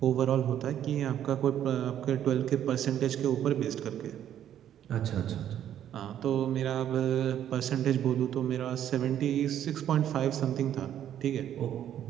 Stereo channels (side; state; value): left; quieter; 10.6 dB